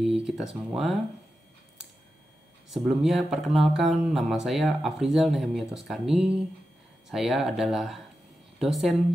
kita semua. Sebelumnya perkenalkan, nama saya Afrizal Nehemia Toskani. Saya adalah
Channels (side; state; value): both; normal; correlation 0.91